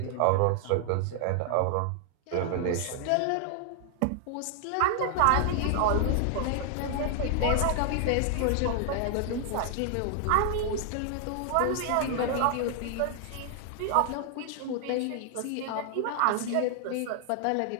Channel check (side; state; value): both; different; correlation 0.00